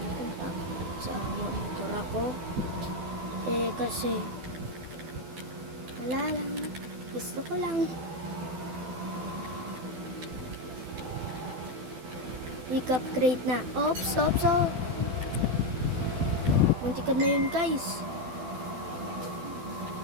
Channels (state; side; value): late; left; 12 ms